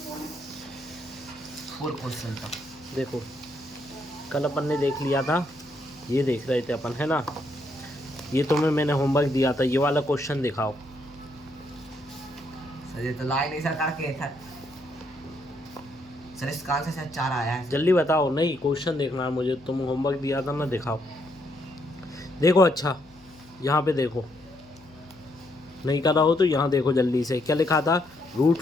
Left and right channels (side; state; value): left; noise; hum, 27 dB below the sound